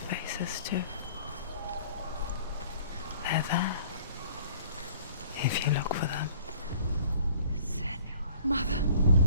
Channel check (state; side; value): inverted; both; correlation -0.52